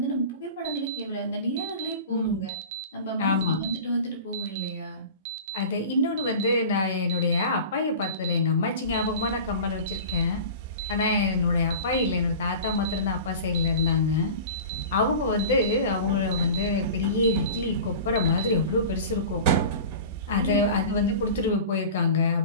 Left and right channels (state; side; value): inverted; both; correlation -0.36